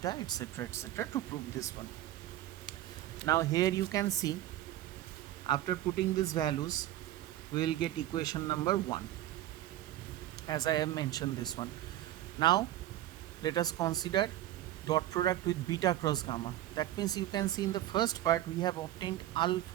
etc., to prove this one. Now here you can see after putting these values we will get equation number 1, as I have mentioned this one. Now let us consider dot product with beta cross gamma. That means you can see in the first part we have obtained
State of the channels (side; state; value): left; quieter; 13.8 dB